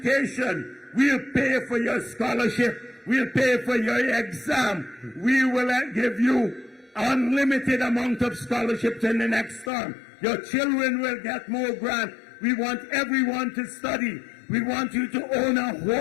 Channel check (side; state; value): right; drops out; at 9.7 s